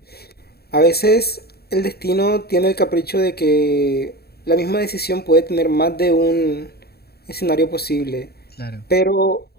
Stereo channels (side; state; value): right; late; 0.46 ms